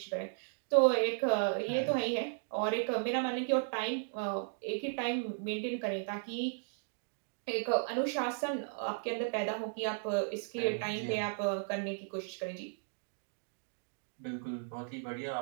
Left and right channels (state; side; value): silent; left; digital silence